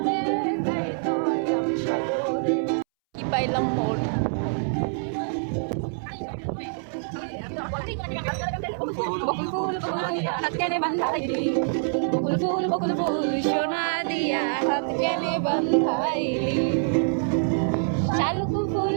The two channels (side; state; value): left; silent; 61 dB below the other